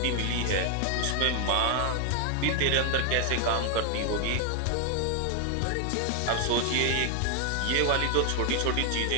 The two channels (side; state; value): both; different; correlation 0.00